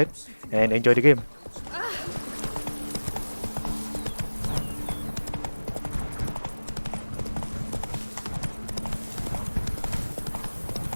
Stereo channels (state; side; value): inverted; both; correlation -1.00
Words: and enjoy the game.